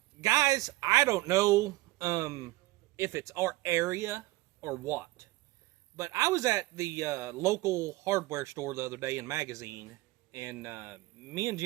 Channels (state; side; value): quieter; left; 19.2 dB